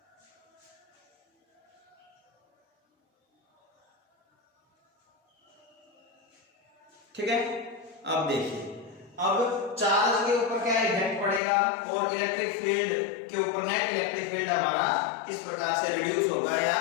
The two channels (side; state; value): right; drops out; at 11.4 s